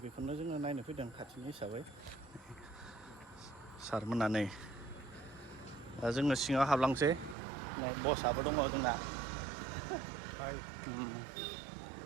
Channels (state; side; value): drops out; left; at 7.4 s